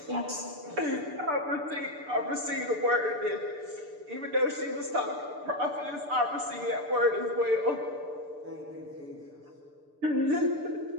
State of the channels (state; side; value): late; left; 6.8 ms